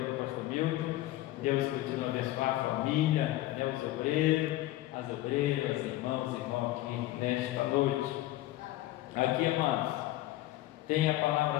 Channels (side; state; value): right; quieter; 16.0 dB